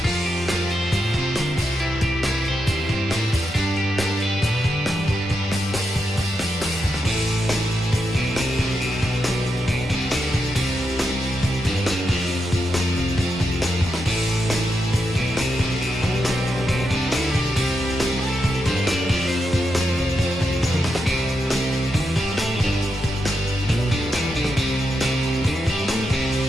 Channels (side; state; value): both; normal; correlation 0.85